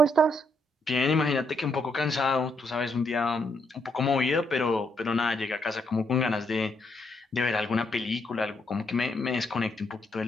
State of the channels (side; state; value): both; normal; correlation 0.77